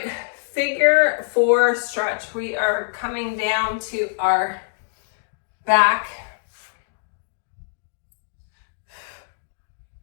figure 4 stretch. We are coming down to our back.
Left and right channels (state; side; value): silent; right; digital silence